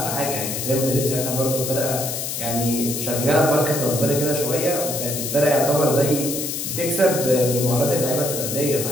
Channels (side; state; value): left; noise; hiss, 4 dB below the sound